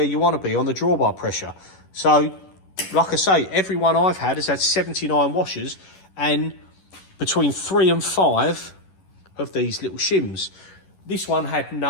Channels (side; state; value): right; late; 11 ms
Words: you want to be on the drawbar pressure. So, like I say, every one I've had has had 79 washers and between 3 and 5 of these little shims. This one had